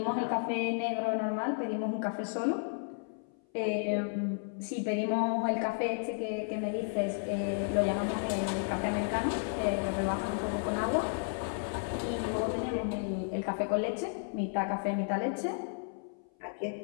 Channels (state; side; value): silent; right; 56 dB below the other